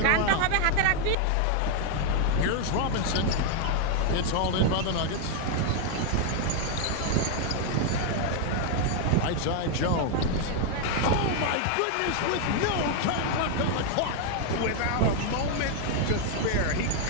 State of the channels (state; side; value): different; both; correlation 0.00